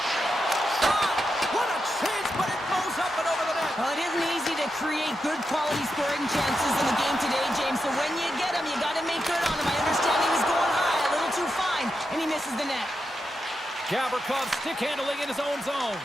Shot! What a chance, but it goes up and over the net. Well, it isn't easy to create good quality scoring chances in the game today, James, so when you get them, you got to make good on them. I understand he was going high, a little too fine, and he misses the net. Gavrikov stick handling in his own zone.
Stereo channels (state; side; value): normal; both; correlation 0.87